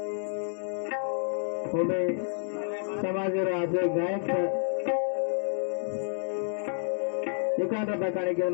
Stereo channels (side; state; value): right; silent; digital silence